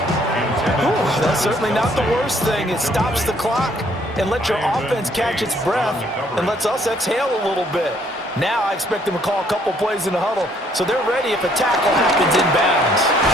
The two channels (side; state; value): both; normal; correlation 0.65